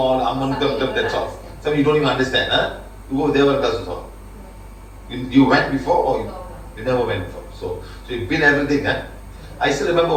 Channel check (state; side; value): identical; both; correlation 1.00